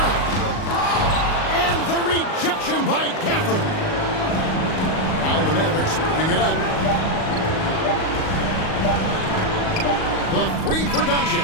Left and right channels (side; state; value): right; late; 38 ms